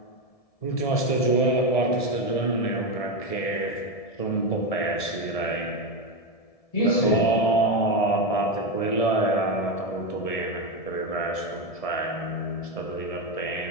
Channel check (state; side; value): late; right; 1.7 ms